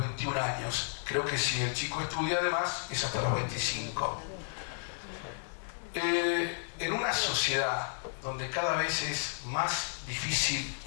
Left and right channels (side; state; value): right; silent; digital silence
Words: años. Creo que si el chico estudia además es hasta los 25. En una sociedad donde cada vez es más difícil